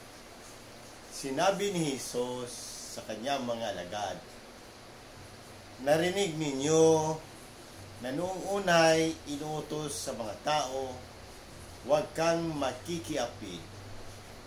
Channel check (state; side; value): identical; both; correlation 1.00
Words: sinabi ni Jesus sa kanyang mga alagad, "Narinig ninyo na noong unay inuutos sa mga tao, huwag kang makikiapid.